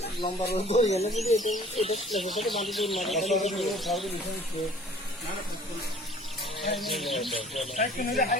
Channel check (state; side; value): normal; both; correlation 0.51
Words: লম্বা রোদ হয়ে গেলে যদি এটা সাথে বাঁধি